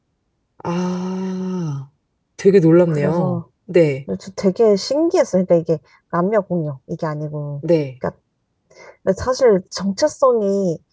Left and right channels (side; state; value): both; identical; correlation 1.00